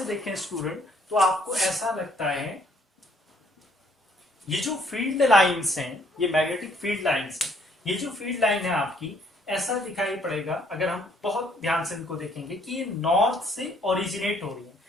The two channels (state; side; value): normal; both; correlation 0.65